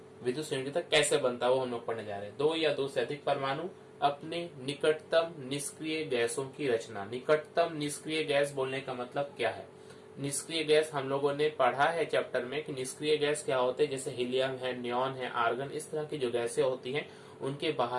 विद्युत संयोजकता कैसे बनता है वो हम लोग पढ़ने जा रहे हैं। दो या दो से अधिक परमाणु अपने निकटतम निष्क्रिय गैसों की रचना। निकटतम निष्क्रिय गैस बोलने का मतलब क्या है? निष्क्रिय गैस हम लोगों ने पढ़ा है चैप्टर में कि निष्क्रिय गैस क्या होते हैं। जैसे हीलियम है, नियॉन है, आर्गन, इस तरह की जो गैसें होती हैं उनके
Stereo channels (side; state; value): both; identical; correlation 1.00